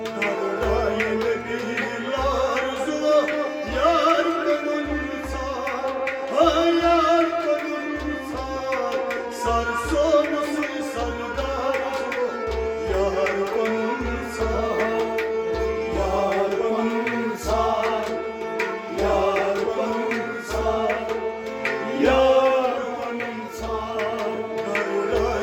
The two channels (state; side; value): identical; both; correlation 1.00